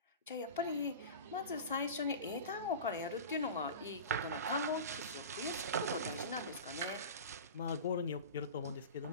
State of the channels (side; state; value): both; inverted; correlation -0.31